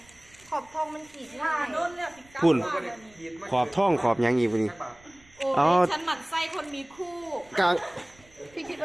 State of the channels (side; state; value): right; noise; rumble, 28 dB below the sound